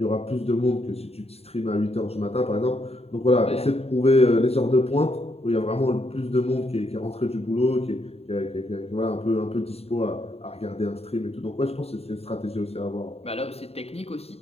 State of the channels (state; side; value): late; right; 0.29 ms